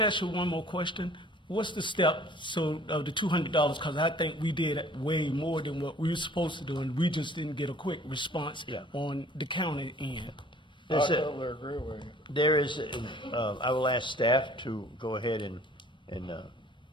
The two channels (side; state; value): both; normal; correlation 0.53